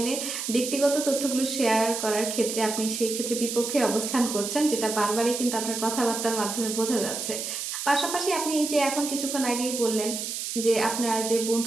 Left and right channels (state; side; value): noise; right; hiss, 4 dB below the sound